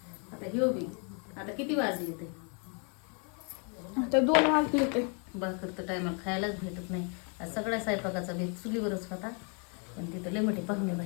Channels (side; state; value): right; quieter; 37.9 dB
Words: आता ह्यो बी आता किती वाजले ते आता 2 वाजले ते भाकर तर टायमाला खायलाच भेटत नाही. आज सगळ्या स्वयंपाकाचा बेत चुलीवरच होता, पण तिथं लय मोठे पाहुणे